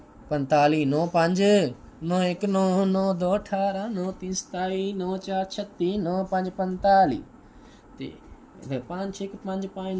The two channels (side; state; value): both; identical; correlation 1.00